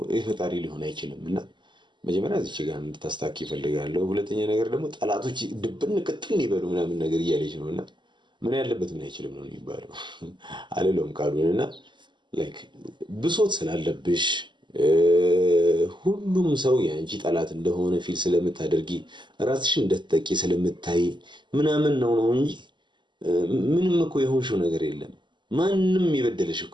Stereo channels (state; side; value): late; left; 0.22 ms